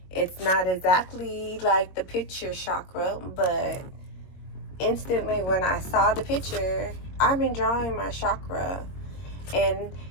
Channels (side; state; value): right; late; 22 ms